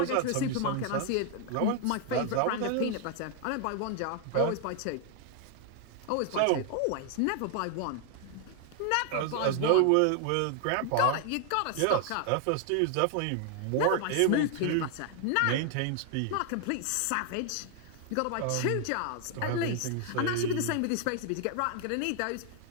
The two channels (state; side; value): different; both; correlation 0.00